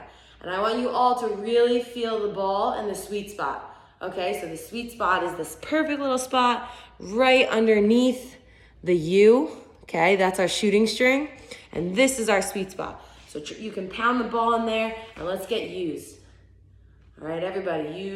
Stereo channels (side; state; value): both; identical; correlation 1.00